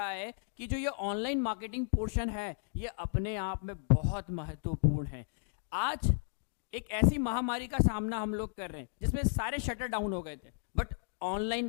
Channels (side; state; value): right; silent; digital silence